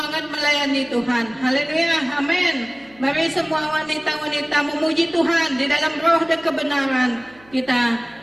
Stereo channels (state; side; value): noise; right; hum, 27 dB below the sound